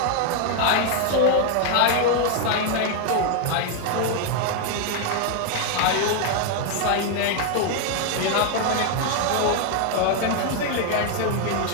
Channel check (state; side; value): different; both; correlation 0.00